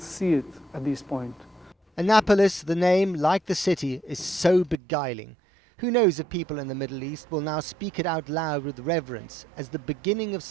see it at this point. Annapolis, the name, like the city, is so beguiling. Who knows if people in the Middle East will now speak it out loud with reverence as the beginning of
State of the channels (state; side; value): drops out; left; at 4.8 s